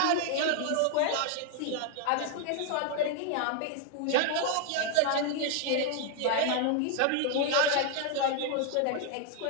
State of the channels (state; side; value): different; both; correlation 0.00